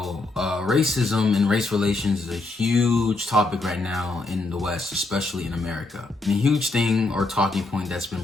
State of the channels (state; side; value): quieter; right; 3.2 dB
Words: racism and race relations is a huge topic right now in the West, especially in America. And a huge thing or talking point that's